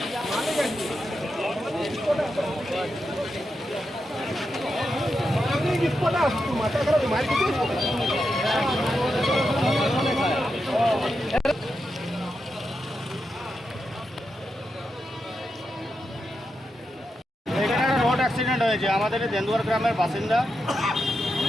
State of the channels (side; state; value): both; normal; correlation 0.87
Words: রোড অ্যাক্সিডেন্ট হয়েছে, আমাদের দেন্দুয়ার গ্রামের বাসিন্দা।